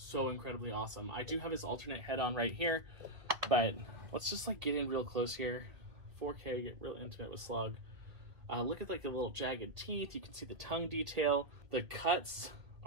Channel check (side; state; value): left; late; 2.0 ms